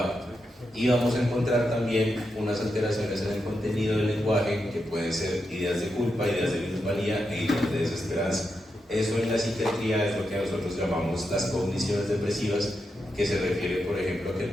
Y vamos a encontrar también unas alteraciones en el contenido del lenguaje que pueden ser ideas de culpa, ideas de minusvalía e ideas de desesperanza. Eso en la psiquiatría es lo que nosotros llamamos las cogniciones depresivas, que se refiere, por ejemplo, a que el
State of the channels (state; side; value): normal; both; correlation 0.86